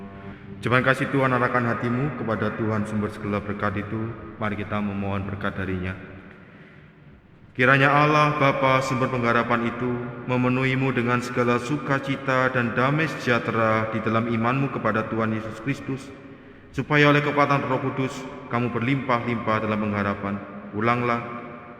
Jemaat kasih Tuhan, arahkan hatimu kepada Tuhan sumber segala berkat itu. Mari kita memohon berkat darinya. Kiranya Allah Bapa sumber pengharapan itu memenuhimu dengan segala sukacita dan damai sejahtera di dalam imanmu kepada Tuhan Yesus Kristus, supaya oleh kekuatan Roh Kudus kamu berlimpah-limpah dalam pengharapan. Ulanglah,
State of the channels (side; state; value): both; identical; correlation 1.00